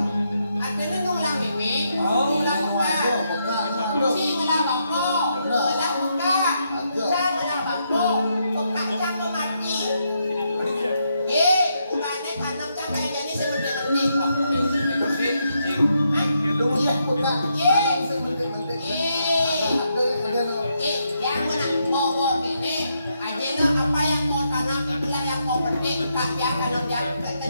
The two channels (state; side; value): inverted; both; correlation -0.79